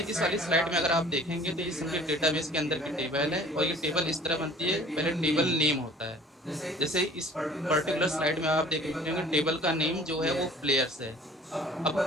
इस वाली स्लाइड में अगर आप देखेंगे तो ये सबके डेटाबेस के अंदर की टेबल है, और ये टेबल इस तरह बनती है। पहले टेबल नेम होता है, जैसे इस पर्टिकुलर स्लाइड में आप देखेंगे टेबल का नेम जो है वो प्लेयर्स है। अब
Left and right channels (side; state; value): both; normal; correlation 0.49